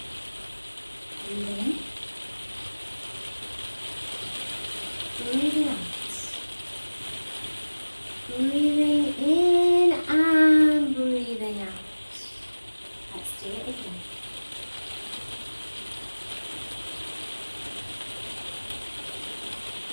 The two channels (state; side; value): inverted; both; correlation -1.00